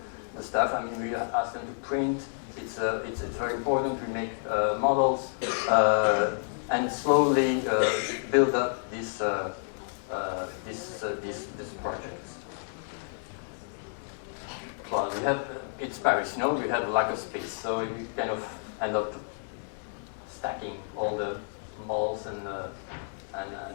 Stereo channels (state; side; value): silent; right; digital silence